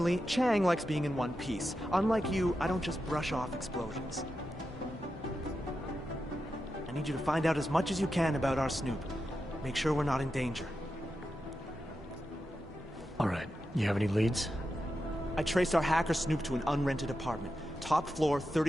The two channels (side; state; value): both; normal; correlation 0.89